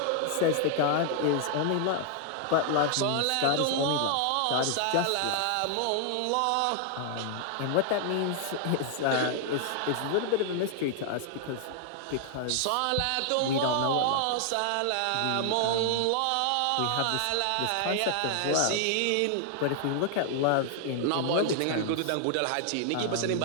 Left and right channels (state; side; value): different; both; correlation 0.00